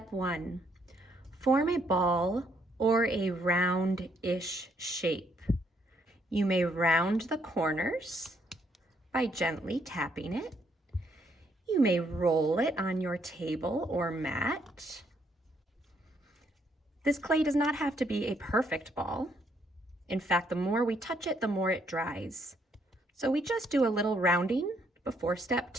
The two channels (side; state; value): both; normal; correlation 0.71